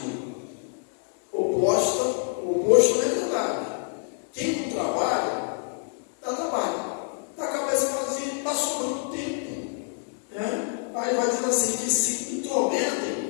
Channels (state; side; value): silent; right; 55 dB below the other